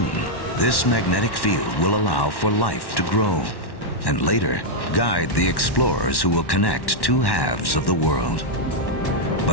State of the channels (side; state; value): right; late; 1.1 ms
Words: this magnetic field will allow for life to grow, and later, guide the explorers who will connect two halves of the world.